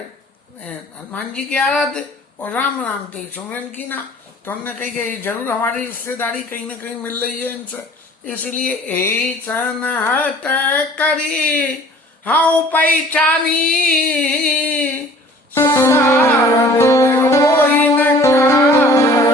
हनुमान जी की आराध्य और राम नाम ते सुमरन की ना, तो हमने कही कि जरूर हमारी रिश्तेदारी कहीं ना कहीं मिल रही है इनसे, इसलिए यही सनहत करी हाँ पहचानी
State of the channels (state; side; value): normal; both; correlation 0.49